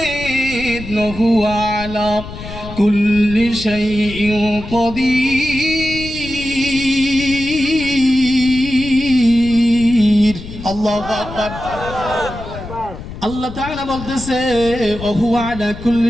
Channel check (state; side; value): noise; left; rumble, 12 dB below the sound